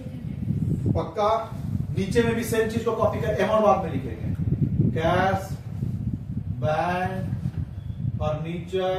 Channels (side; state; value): both; identical; correlation 1.00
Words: पक्का। नीचे में भी सेम चीज को कॉपी कर, अमाउंट बाद में लिखेंगे। कैश, बैंक, फर्नीचर